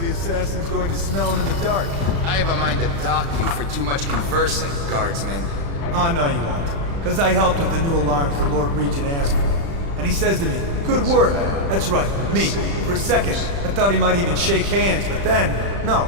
Going to smell him in the dark. I have a mind to dock you for too much conversing, guardsman. Oh, no you won't. Because I helped with the new alarms the Lord Regent asked for. And he says to me, good work. That's right, me. For a second, I thought he might even shake hands, but then, no,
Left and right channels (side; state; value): left; late; 35 ms